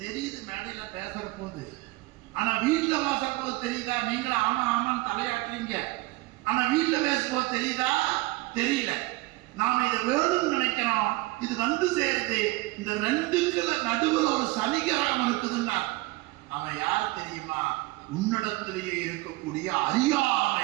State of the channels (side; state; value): left; quieter; 20.8 dB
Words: தெரியுது மேடையில பேசுற போது. ஆனா வீட்டுல பேசுற போது தெரியுதா? நீங்களும் ஆமா ஆமான்னு தலையாட்டுறீங்க. ஆனா வீட்டுல பேசும்போது தெரியுதா? தெரியல. நாம இதை வேணும்னு நினைக்கிறோம், இது வந்து சேருது. இந்த ரெண்டுக்குள்ள நடுவில் ஒரு சனிகிரகம் இருக்குதுன்னா அவன் யார் தெரியுமா? உன்னிடத்திலேயே இருக்கக்கூடிய